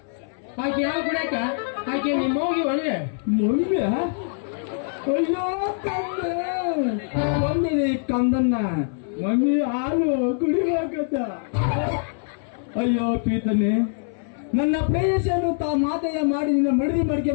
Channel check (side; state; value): right; silent; 59 dB below the other